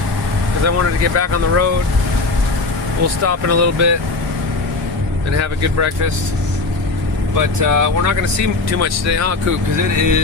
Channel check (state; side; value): quieter; right; 3.4 dB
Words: I wanted to get back on the road. We'll stop in a little bit and have a good breakfast. But we're not going to see too much today, huh, Coop? Because it